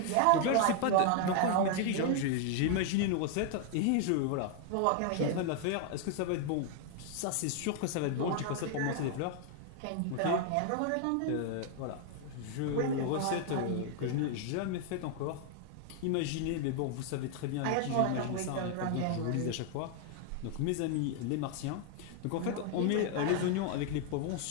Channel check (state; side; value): different; both; correlation 0.00